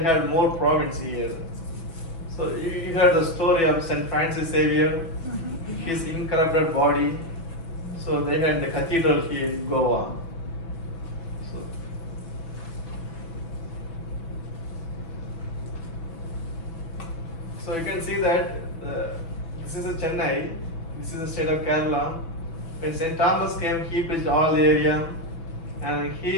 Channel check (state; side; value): late; right; 6.0 ms